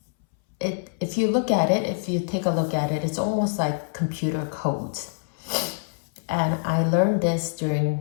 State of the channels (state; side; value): silent; right; 62 dB below the other